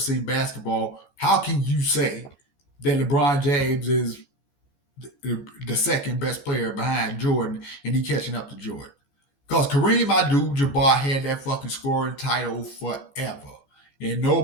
basketball, how can you say that LeBron James is the second best player behind Jordan and he catching up to Jordan? Because Kareem Abdul-Jabbar had that fucking scoring title forever. And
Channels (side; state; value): right; late; 14 ms